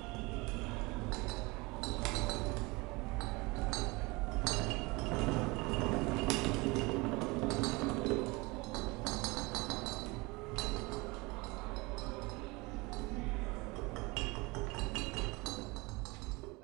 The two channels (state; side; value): quieter; left; 24.7 dB